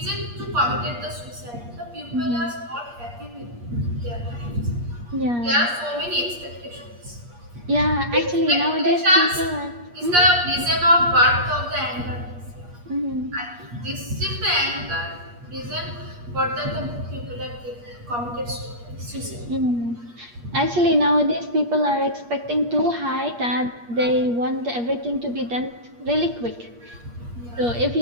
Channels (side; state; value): left; late; 8.5 ms